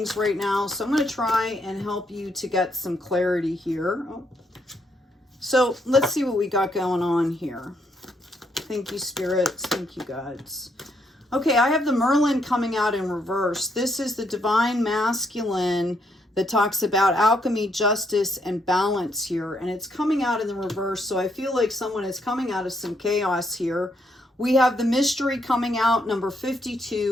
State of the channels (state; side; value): normal; both; correlation 0.75